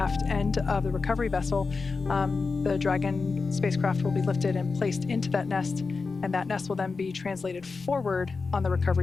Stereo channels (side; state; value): right; quieter; 4.4 dB